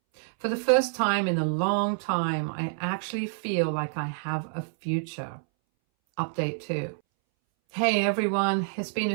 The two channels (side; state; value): left; silent; 60 dB below the other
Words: For the first time in a long time, I actually feel like I have a future. Update 2. Hey everyone, it's been a